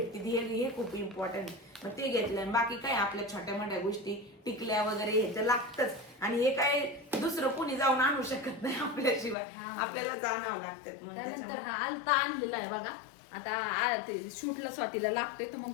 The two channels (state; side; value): drops out; right; at 9.3 s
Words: हे खूप इम्पॉर्टंट. मग ते घेतलं. बाकी काय आपल्या छोट्या मोठ्या गोष्टी टिकल्या वगैरे ह्याचं लागतच, आणि हे काय दुसरं कोणी जाऊन आणू शकत नाही आपल्याशिवाय, आपल्यालाच आणावं लागतं. त्यानंतर हा आलता आणलेला आहे बघा. आता ते शूटला स्वातीला लागतोय तर मग